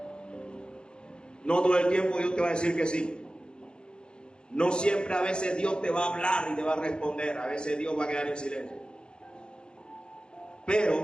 No todo el tiempo Dios te va a decir que sí. No siempre, a veces Dios te va a hablar y te va a responder. A veces Dios va a quedar en silencio.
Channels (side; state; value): right; late; 0.050 ms